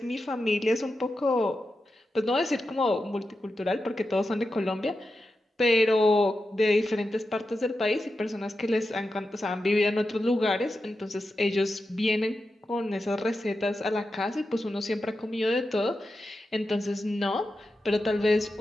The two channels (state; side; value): normal; both; correlation 0.90